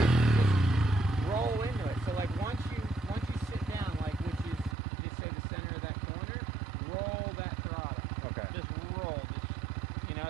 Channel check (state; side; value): drops out; left; at 4.8 s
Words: roll into it. So like once you sit down, like which is you say the center of that corner, roll that throttle. Okay. Just roll.